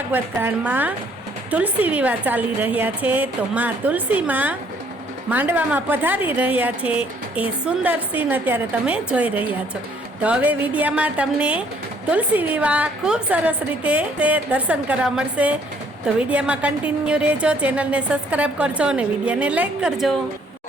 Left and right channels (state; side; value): normal; both; correlation 0.63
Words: कांड में तुलसी विवाह चाली रह्या छे। तो माँ तुलसी में मांडवा में पधारी रह्या छे ए सुंदर सीन अत्यारे तमे जोई रह्या छो। तो हवे विडियो में तमने तुलसी विवाह खूब सरस रीते दर्शन करवा मळशे। तो विडियो में कंटिन्यू रहेजो, चैनल ने सब्सक्राइब करजो और विडियो ने लाइक करजो।